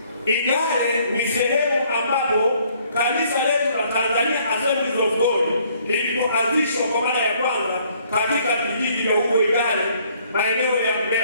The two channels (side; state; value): both; inverted; correlation -0.63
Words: Igale ni sehemu ambapo kanisa letu la Tanzania Assemblies of God lilipoanzishwa kwa mara ya kwanza katika vijiji vya huko Igale, maeneo ya